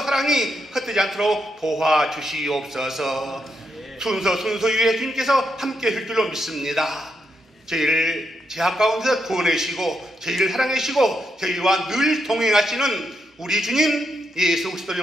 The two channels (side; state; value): both; normal; correlation 0.81